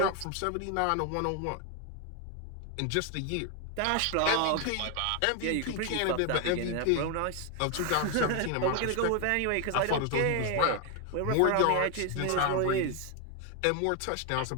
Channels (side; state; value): both; different; correlation 0.01